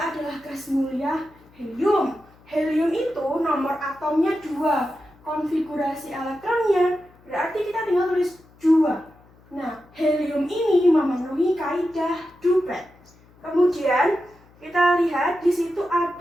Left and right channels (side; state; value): left; noise; hum, 28 dB below the sound